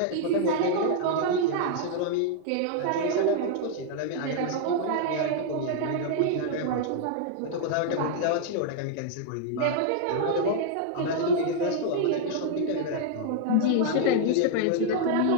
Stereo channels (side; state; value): both; different; correlation -0.01